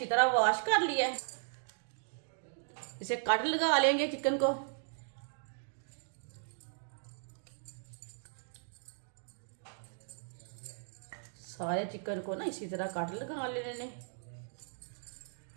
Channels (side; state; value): left; silent; digital silence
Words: तरह वॉश कर लिया है। इसे कट लगा लेंगे चिकन को। सारे चिकन को ना इसी तरह कट लगा लेने।